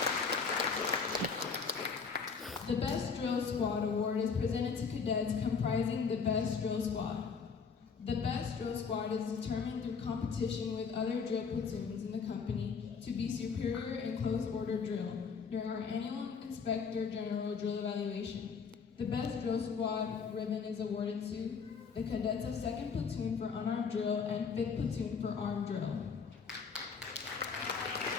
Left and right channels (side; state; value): right; quieter; 5.7 dB